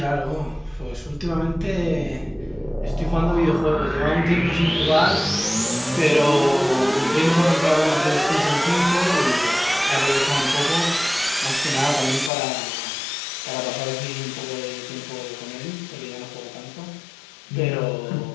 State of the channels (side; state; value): right; drops out; at 12.3 s